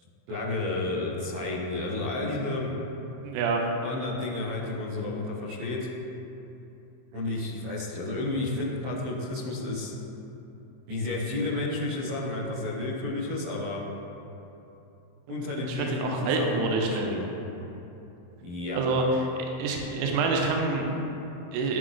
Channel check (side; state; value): left; late; 23 ms